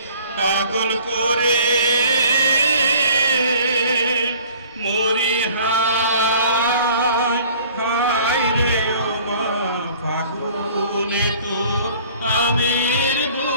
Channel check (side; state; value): both; inverted; correlation -0.51